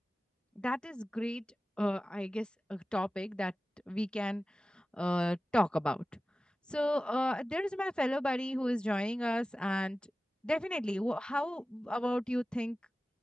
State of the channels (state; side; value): normal; both; correlation 0.96